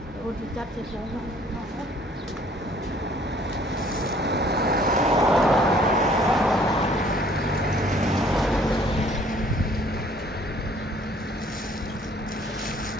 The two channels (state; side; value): normal; both; correlation 0.58